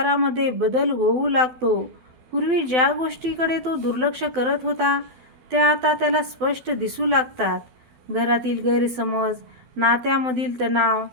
बदल होऊ लागतो. पूर्वी ज्या गोष्टीकडे तो दुर्लक्ष करत होता, त्या आता त्याला स्पष्ट दिसू लागतात. घरातील गैरसमज, नात्यामधील तणाव,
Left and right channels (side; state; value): left; late; 12 ms